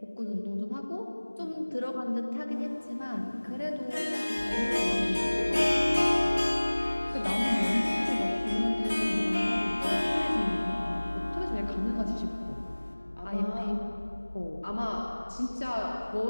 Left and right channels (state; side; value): inverted; both; correlation -1.00